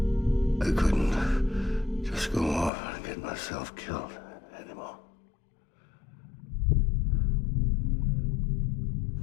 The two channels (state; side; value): drops out; right; at 2.7 s